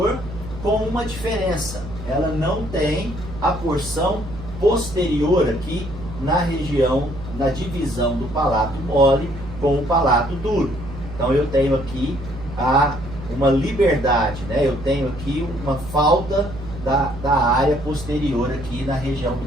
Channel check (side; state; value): right; noise; hum, 12 dB below the sound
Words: com uma diferença: ela não tem a porção posterior aqui na região, na divisão do palato mole com o palato duro. Então eu tenho aqui uma liberdade, né? Eu tenho aqui uma falta da área posterior aqui na região